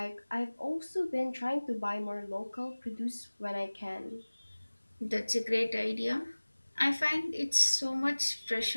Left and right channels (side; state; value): both; inverted; correlation -1.00